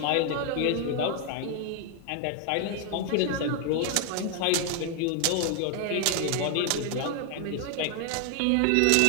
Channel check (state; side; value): different; both; correlation 0.00